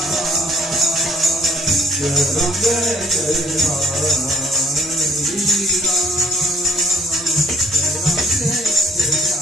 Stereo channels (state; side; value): normal; both; correlation 0.62